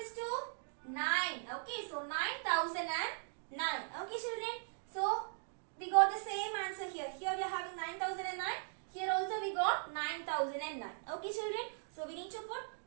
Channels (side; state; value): left; silent; digital silence